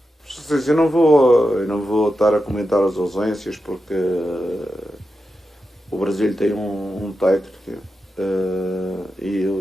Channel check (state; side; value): normal; both; correlation 0.89